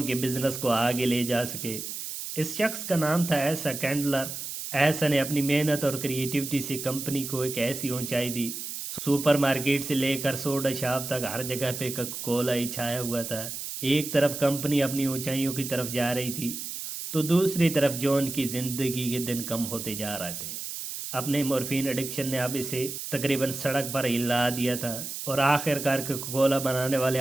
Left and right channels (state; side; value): noise; right; hiss, 7 dB below the sound